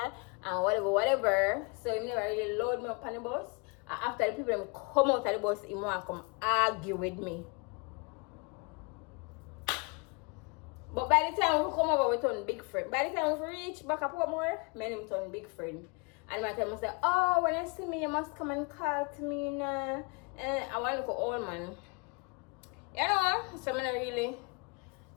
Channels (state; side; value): quieter; right; 32.0 dB